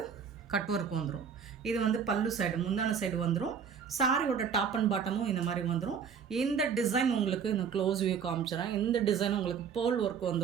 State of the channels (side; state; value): left; quieter; 6.9 dB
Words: கட் ஒர்க் வந்துடும். இது வந்து பல்லு சைடு, முந்தான சைடு வந்துடும். சாரியோட டாப் அண்ட் பாட்டமும் இந்த மாதிரி வந்துடும். இந்த டிசைன் உங்களுக்கு நான் க்ளோஸ் வியூ காமிச்சிடறேன். இந்த டிசைன் உங்களுக்கு பேர்ல் ஒர்க்